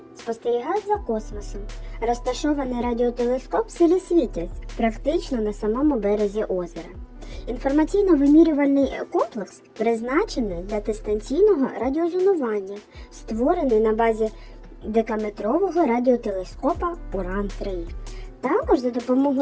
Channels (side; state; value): both; identical; correlation 1.00